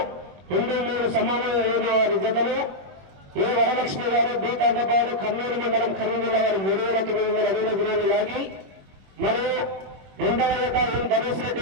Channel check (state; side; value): late; left; 21 ms